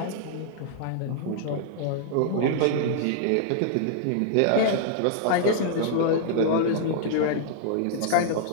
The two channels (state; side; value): different; both; correlation -0.01